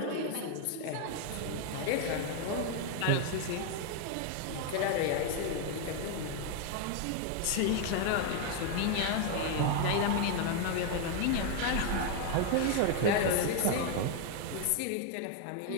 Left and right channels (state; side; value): different; both; correlation 0.00